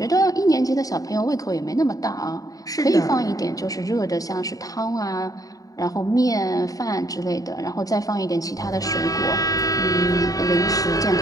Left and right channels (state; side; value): late; right; 0.17 ms